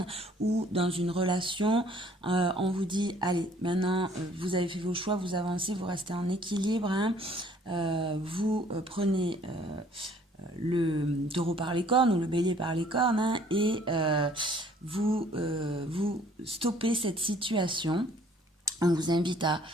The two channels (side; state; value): both; normal; correlation 0.58